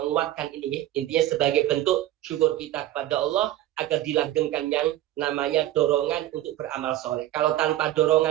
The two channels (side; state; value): left; quieter; 13.8 dB